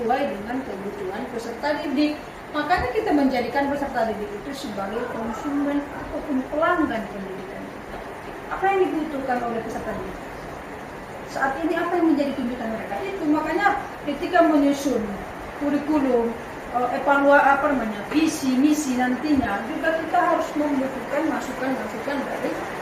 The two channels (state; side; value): identical; both; correlation 1.00